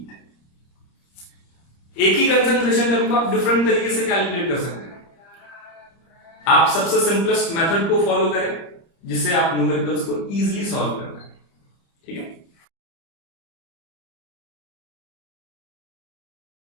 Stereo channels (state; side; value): late; right; 30 ms